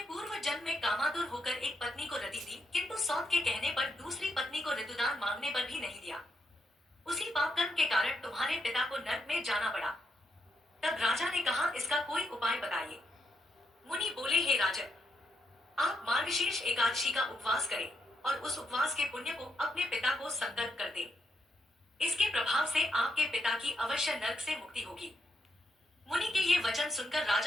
जन्म में कामातुर होकर एक पत्नी को रति दी, किंतु सौत के कहने पर दूसरी पत्नी को ऋतुदान मांगने पर भी नहीं दिया। उसी पाप कर्म के कारण तुम्हारे पिता को नरक में जाना पड़ा। तब राजा ने कहा, इसका कोई उपाय बताइए। मुनि बोले, हे राजन, आप मार्गशीर्ष एकादशी का उपवास करें और उस उपवास के पुण्य को अपने पिता को संकल्प कर दें। इसके प्रभाव से आपके पिता की अवश्य नरक से मुक्ति होगी। मुनि के ये वचन सुनकर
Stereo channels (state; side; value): normal; both; correlation 0.80